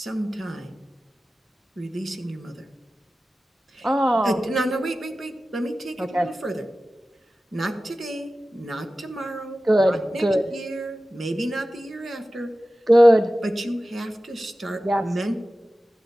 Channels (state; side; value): normal; both; correlation 0.95